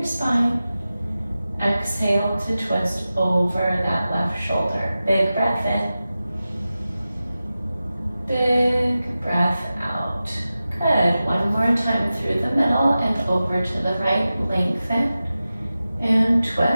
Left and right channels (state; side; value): inverted; both; correlation -0.94